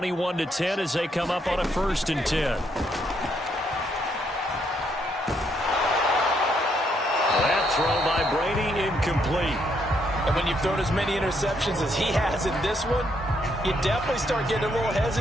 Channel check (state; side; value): normal; both; correlation 0.74